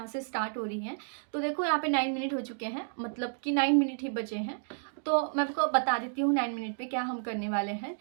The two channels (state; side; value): silent; left; digital silence